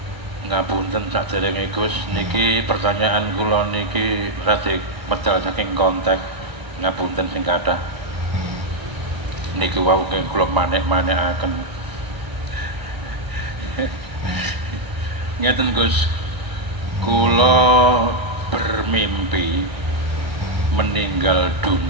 Ngapunten saderenge Gus, niki pertanyaan kula niki rada medal saking konteks. Ngapunten sing kathah. Niki wau kula manek-manekaken. Ngeten Gus, kula bermimpi meninggal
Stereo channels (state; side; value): late; left; 1.0 ms